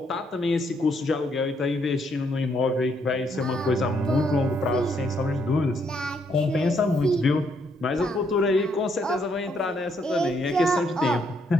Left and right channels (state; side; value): normal; both; correlation 0.73